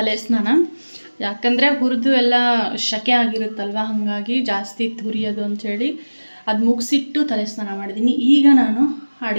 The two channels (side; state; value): both; inverted; correlation -1.00